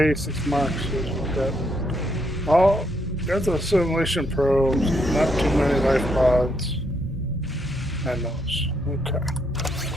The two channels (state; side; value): normal; both; correlation 0.75